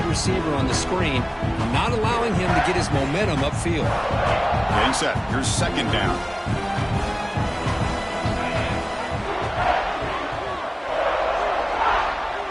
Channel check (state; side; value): identical; both; correlation 1.00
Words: receiver on the screen, not allowing him to get his momentum upfield. Getting set. Here's 2nd down.